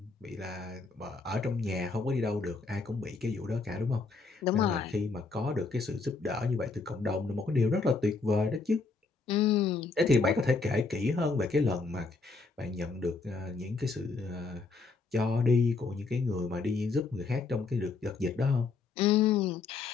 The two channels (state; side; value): quieter; right; 4.1 dB